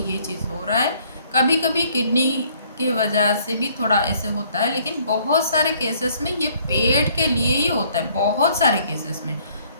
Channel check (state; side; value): inverted; both; correlation -0.61